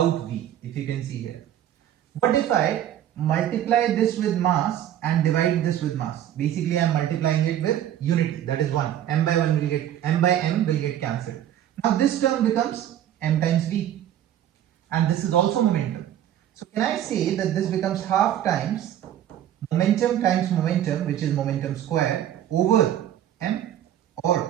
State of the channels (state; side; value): quieter; left; 11.2 dB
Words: v, if you can see here. What if I multiply this with mass and divide this with mass? Basically, I am multiplying it with unity, that is 1. M by 1 will get, m by m will get cancelled. Now this term becomes m times v, and this is also momentum. So can I say that this becomes half times momentum, which is momentum square, over m,